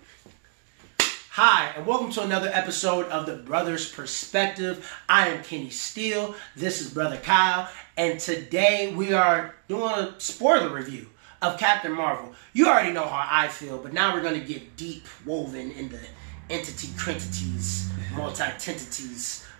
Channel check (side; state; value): left; silent; 61 dB below the other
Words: Hi, and welcome to another episode of The Brother's Perspective. I am Kenny Steele. This is Brother Kyle. And today we are doing a spoiler review of Captain Marvel. You already know how I feel, but now we're going to get deep woven in the entity-crentities, multi-tentities